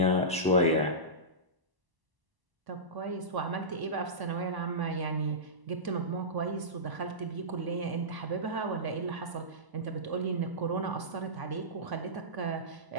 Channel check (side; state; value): left; late; 1.0 ms